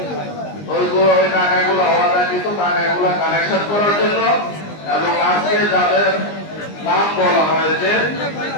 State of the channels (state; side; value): late; right; 20 ms